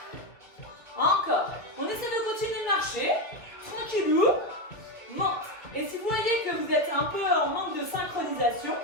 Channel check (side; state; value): right; late; 2.0 ms